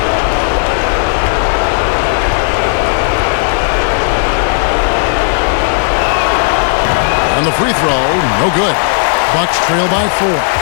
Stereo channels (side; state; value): right; silent; 65 dB below the other